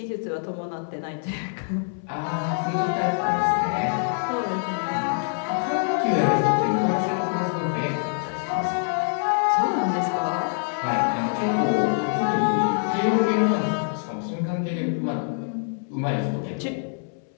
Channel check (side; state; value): right; silent; 61 dB below the other